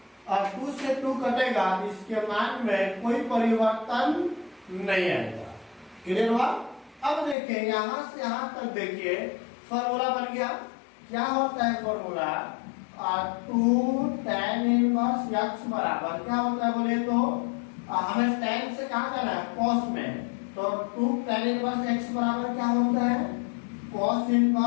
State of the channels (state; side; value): drops out; right; at 7.4 s